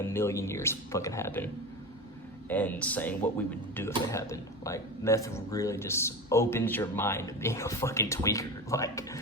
million years fucking happen, and saying what we would do if it happened. Like, meth really just opens your mind to being a fucking tweaker. Like,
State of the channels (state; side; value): normal; both; correlation 0.25